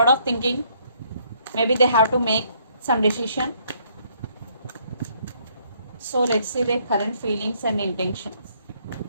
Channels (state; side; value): inverted; both; correlation -0.67